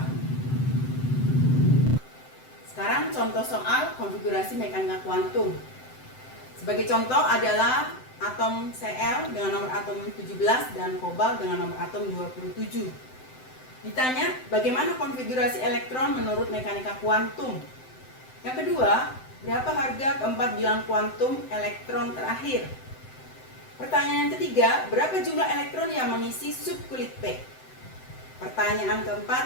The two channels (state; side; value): late; right; 7.8 ms